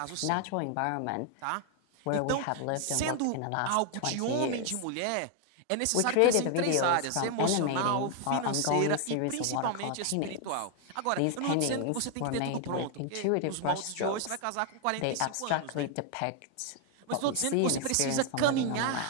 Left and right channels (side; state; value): both; different; correlation 0.00